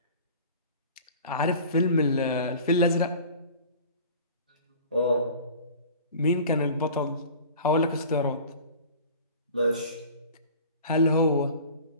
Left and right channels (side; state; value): both; inverted; correlation -0.42